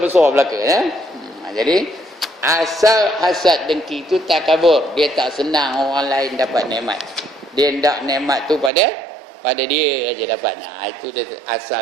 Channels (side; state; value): left; drops out; at 8.7 s